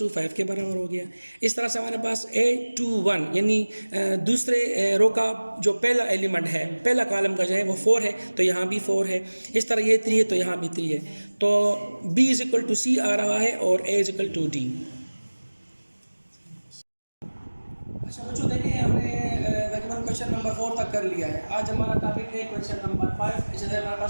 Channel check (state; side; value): inverted; both; correlation -1.00